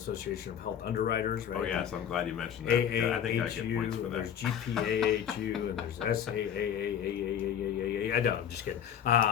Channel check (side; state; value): right; quieter; 9.1 dB